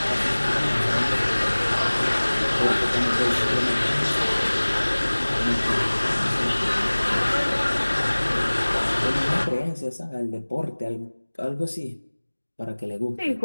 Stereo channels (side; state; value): both; inverted; correlation -1.00